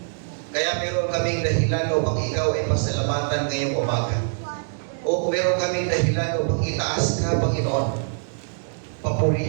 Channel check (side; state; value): left; silent; digital silence